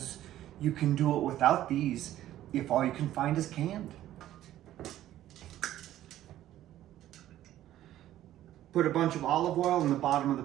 you can do it without these if all you can find is canned. Put a bunch of olive oil in the bottom of the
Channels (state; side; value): quieter; left; 13.2 dB